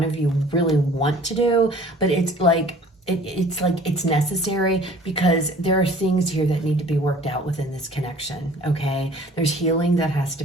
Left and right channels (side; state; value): both; normal; correlation 0.50